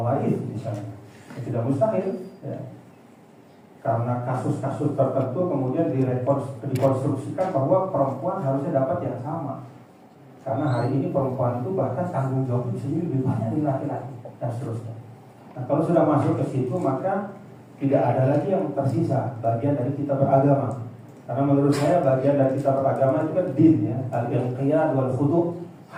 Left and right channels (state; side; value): identical; both; correlation 1.00